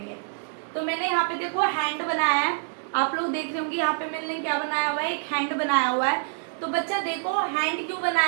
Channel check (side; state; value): left; silent; digital silence